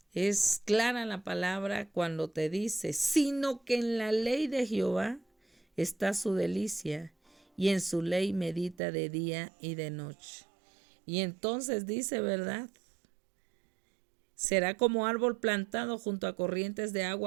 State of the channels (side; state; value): left; drops out; at 8.8 s